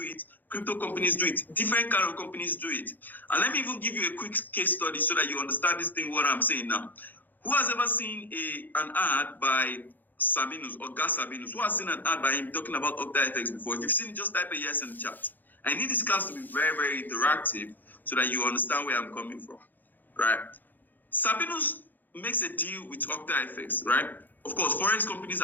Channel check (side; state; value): right; late; 0.086 ms